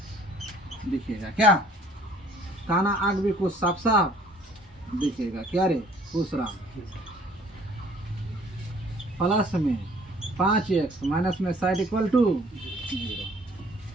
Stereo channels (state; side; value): normal; both; correlation 0.56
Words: दिखेगा, क्या काना आग भी कुछ साफ साफ दिखेगा, क्या रे दूसरा, प्लस में 5x माइनस में साइड इक्वल टू 0।